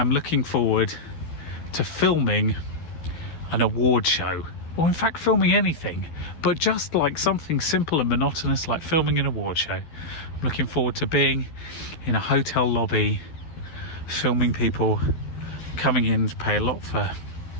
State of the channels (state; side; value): late; right; 12 ms